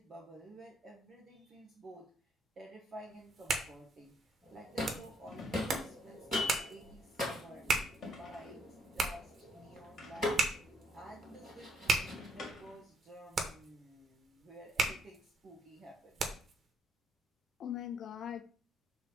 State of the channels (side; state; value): both; normal; correlation 0.71